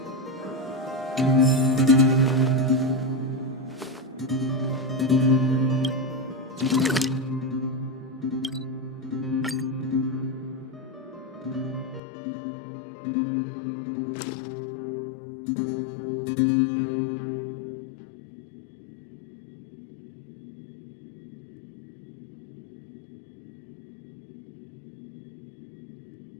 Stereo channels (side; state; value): right; drops out; at 12.0 s